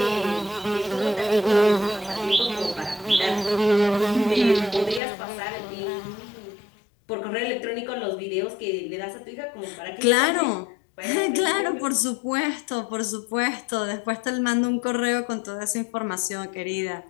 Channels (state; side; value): drops out; right; at 5.0 s